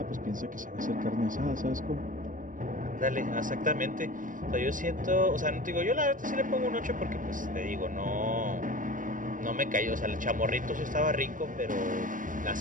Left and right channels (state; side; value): late; left; 0.38 ms